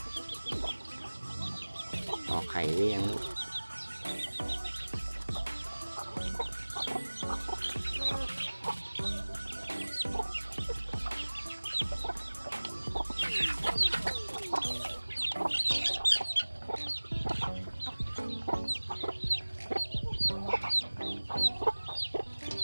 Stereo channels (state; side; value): inverted; both; correlation -1.00